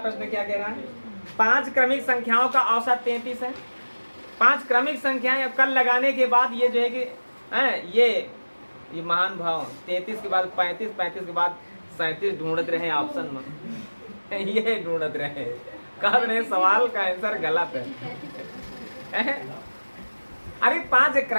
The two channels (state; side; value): inverted; both; correlation -1.00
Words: क्या कह रहा है? 5 क्रमिक संख्याओं का औसत 33 है। 5 क्रमिक संख्याएं अब कल लगाने के बाद ये जो है कि ये महान भाव 33 के बाद 35, 35 के बाद 37 ढूंढते रहे ऑप्शन में ये ढूंढते रहे, कह रहे सवाल का आंसर गलत है। अरे 5